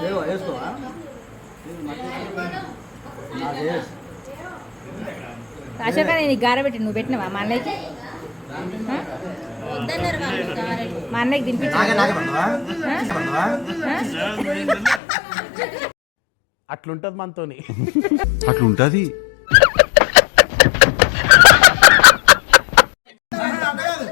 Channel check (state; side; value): drops out; right; at 15.0 s